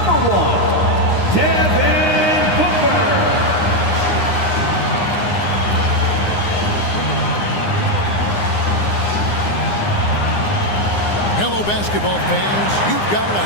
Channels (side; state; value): right; late; 9.7 ms